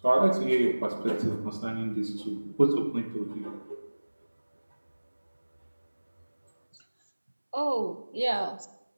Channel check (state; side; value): inverted; both; correlation -1.00